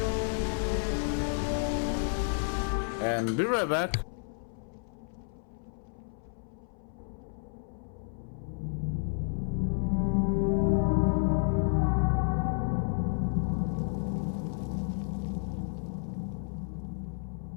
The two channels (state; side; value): silent; right; 56 dB below the other